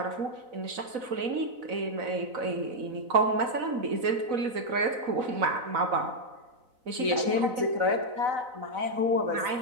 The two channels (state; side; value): late; left; 4.0 ms